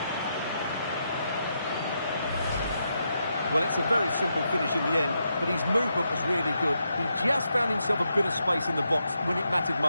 Well, it's a very simple finish in the end, but his movement was really good. He just found himself a bit of space in the box when it mattered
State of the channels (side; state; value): both; inverted; correlation -0.82